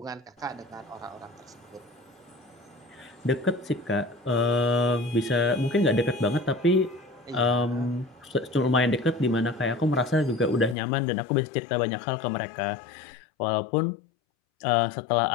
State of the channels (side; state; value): right; drops out; at 10.8 s